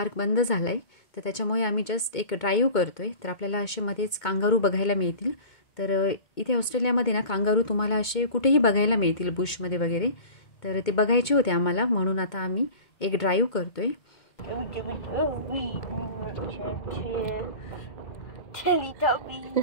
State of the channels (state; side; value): late; right; 2.2 ms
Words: बंद झाला आहे, तर त्याच्यामुळे आम्ही जस्ट एक ड्राईव्ह करतोय. तर आपल्याला असे मध्येच कांगारू बघायला मिळतील. तर इथे ऑस्ट्रेलियामध्ये ना कांगारू तुम्हाला असे कुठेही बघायला मिळतील, बुशमध्ये वगैरे. तर ते बघायचे होते आम्हाला, म्हणून आता आम्ही एक ड्राईव्ह करतोय.